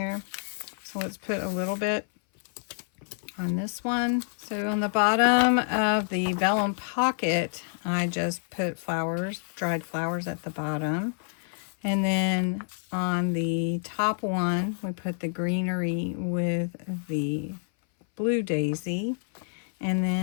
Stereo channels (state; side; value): silent; right; 59 dB below the other